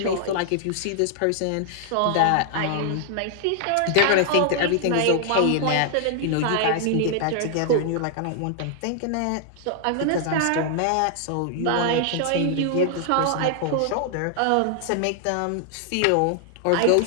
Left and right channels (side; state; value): both; different; correlation 0.00